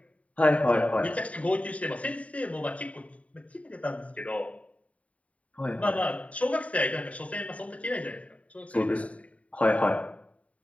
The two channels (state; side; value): late; right; 0.067 ms